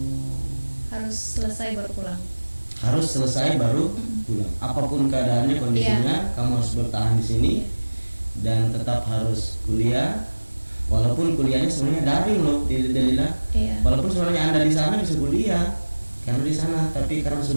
Harus selesai baru pulang. Harus selesai baru pulang. Apapun keadaannya, kondisinya, kamu harus bertahan di sini dan tetap harus kuliah. Walaupun kuliahnya sebenarnya daring loh, Delila. Iya. Walaupun sebenarnya Anda di sana bisa kuliah karena di sana, tapi karena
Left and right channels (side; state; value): both; inverted; correlation -1.00